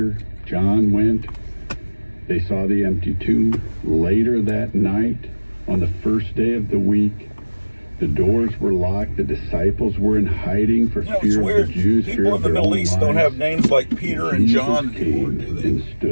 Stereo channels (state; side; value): inverted; both; correlation -1.00